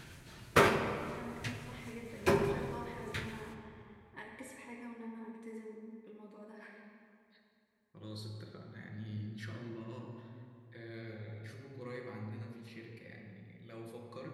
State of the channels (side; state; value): both; identical; correlation 1.00